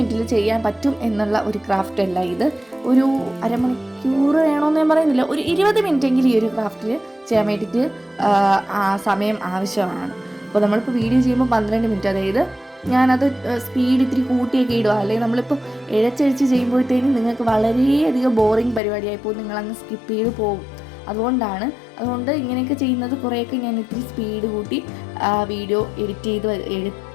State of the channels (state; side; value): drops out; right; at 18.8 s